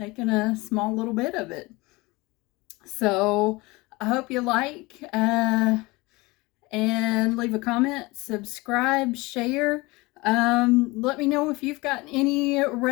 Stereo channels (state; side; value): quieter; right; 23.1 dB